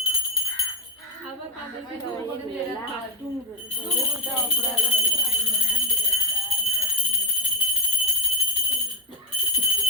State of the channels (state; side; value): normal; both; correlation 0.03